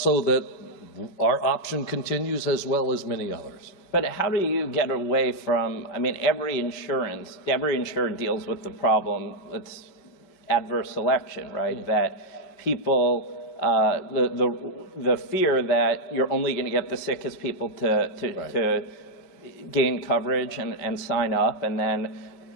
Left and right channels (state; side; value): late; right; 5.2 ms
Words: that our option continues as well as many others. But how do you get away from, I mean, every insurer deals with the problem, it's adverse selection, right? Yeah. That people, the fear that you're only going to get the sickest people to gain coverage and sign up, and then